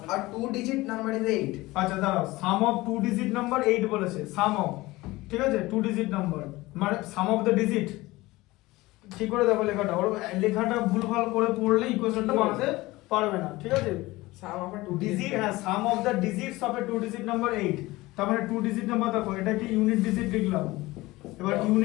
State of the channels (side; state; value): right; quieter; 19.8 dB